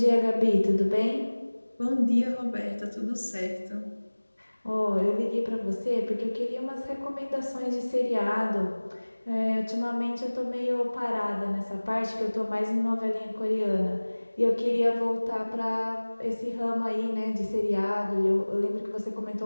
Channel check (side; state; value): both; inverted; correlation -1.00